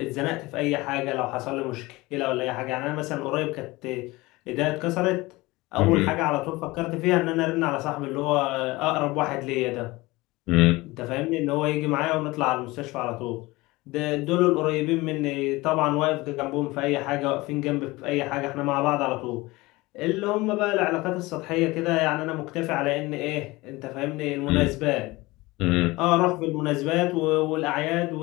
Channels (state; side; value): quieter; right; 21.3 dB